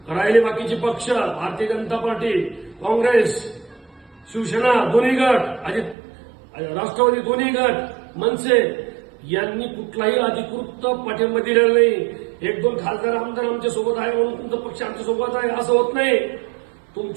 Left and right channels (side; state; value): left; drops out; at 6.0 s